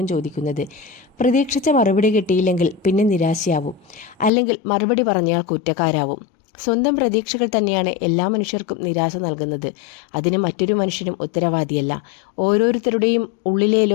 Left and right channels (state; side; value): drops out; right; at 4.3 s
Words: ചോദിക്കുന്നത്. പ്രതീക്ഷിച്ച മറുപടി കിട്ടിയില്ലെങ്കിൽ പിന്നെ നിരാശയാവും, അല്ലെങ്കിൽ മറുപടി പറഞ്ഞാൽ കുറ്റക്കാരാവും. സ്വന്തം പ്രതീക്ഷകൾ തന്നെയാണ് എല്ലാ മനുഷ്യർക്കും നിരാശ നൽകുന്നത്. അതിന് മറ്റൊരു മനുഷ്യനും ഉത്തരവാദിയല്ല. ഓരോരുത്തരുടെയും ഉള്ളിലെ